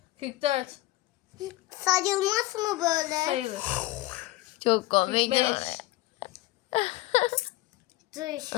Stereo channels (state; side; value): quieter; right; 17.8 dB